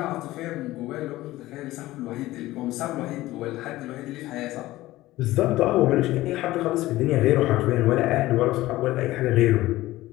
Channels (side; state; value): right; quieter; 17.0 dB